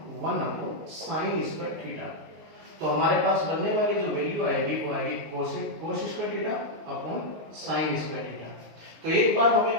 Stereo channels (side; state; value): left; late; 19 ms